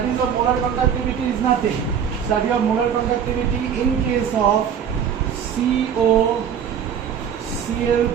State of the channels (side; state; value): left; quieter; 8.1 dB